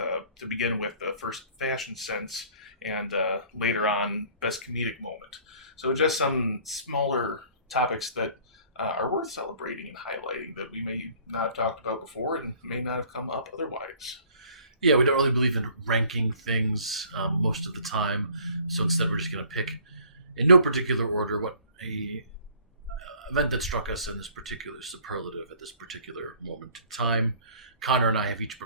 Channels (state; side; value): inverted; both; correlation -0.55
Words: begin with the first fashion sense and later on best comedic moment. So just some smaller topics that are worth celebrating and highlighting that we may not have talked about before and may not have come up otherwise. Yeah, we don't really believe in ranking things most of the time. So instead we're just going to pick in no particular order what a event that struck us in this particular superlative at this particular moment in time. Connor and I have each